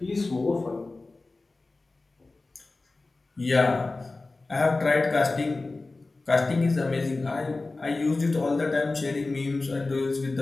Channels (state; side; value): quieter; right; 3.4 dB